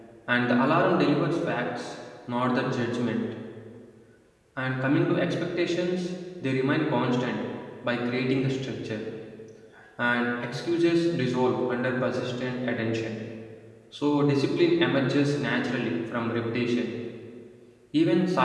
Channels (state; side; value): identical; both; correlation 1.00